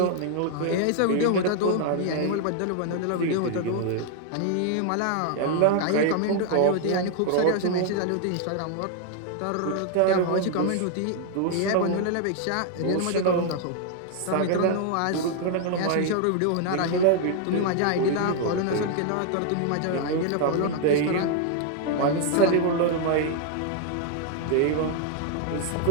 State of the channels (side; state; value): both; different; correlation 0.00